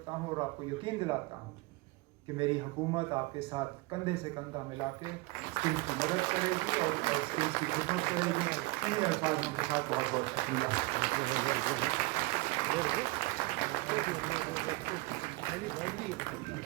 हूँ और आपको यकीन दिलाता हूँ कि मेरी हुकूमत आपके साथ कंधे से कंधा मिला के स्किम्स की मदद करेगी और स्किम्स की खिदमत करेगी। इन्हीं अल्फाज़ों के साथ बहुत बहुत शुक्रिया।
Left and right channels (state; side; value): quieter; left; 22.8 dB